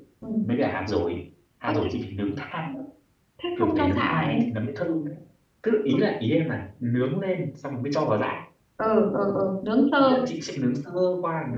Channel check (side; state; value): both; identical; correlation 1.00